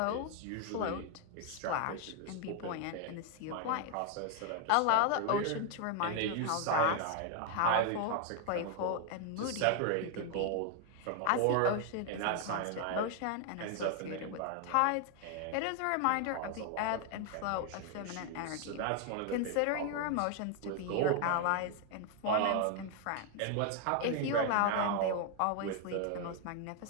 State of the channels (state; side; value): different; both; correlation 0.00